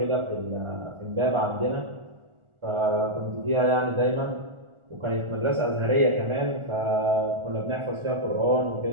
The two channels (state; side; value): late; left; 1.4 ms